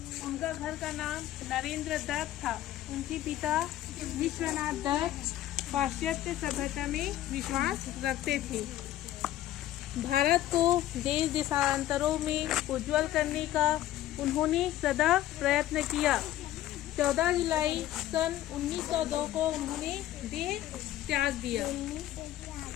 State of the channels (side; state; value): right; quieter; 13.7 dB